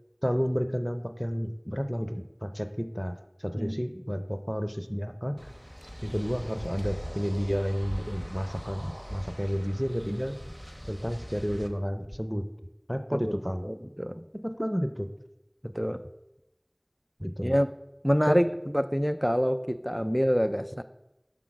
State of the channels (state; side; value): identical; both; correlation 1.00